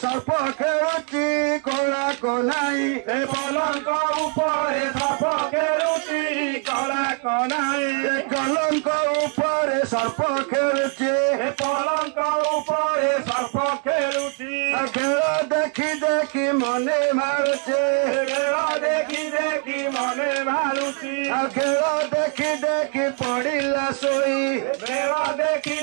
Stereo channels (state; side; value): quieter; left; 36.4 dB